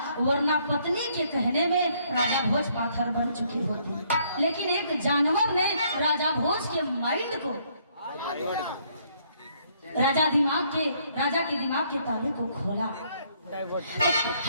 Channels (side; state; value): both; inverted; correlation -0.67